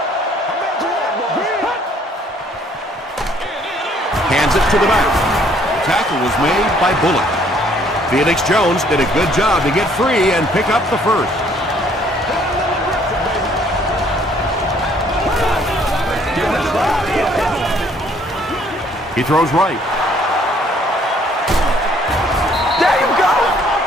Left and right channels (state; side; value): normal; both; correlation 0.62